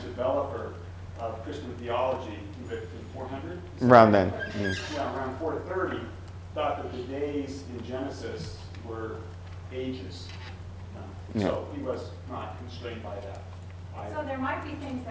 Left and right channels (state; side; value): identical; both; correlation 1.00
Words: developer of Christian theology, who lived in 400? around then. Yeah, around 430, thought that the days in Genesis were ages. So he was not constrained by that. So there might be things